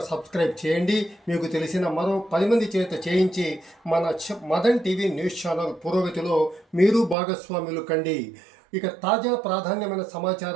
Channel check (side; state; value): left; drops out; at 7.2 s